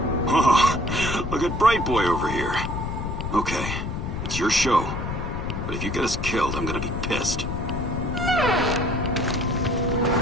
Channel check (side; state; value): left; noise; rumble, 4 dB below the sound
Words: Oh, look at Bright Boy over here. Okay, it's your show. But if you get us killed, I'm gonna be pissed.